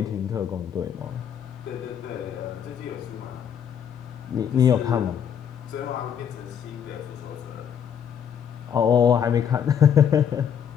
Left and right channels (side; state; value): right; quieter; 8.3 dB